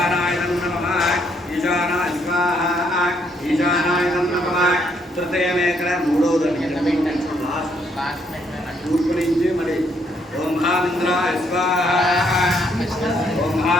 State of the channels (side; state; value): both; normal; correlation 0.71